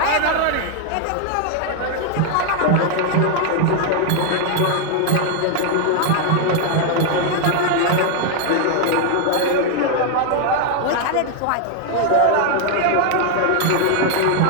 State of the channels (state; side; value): different; both; correlation 0.00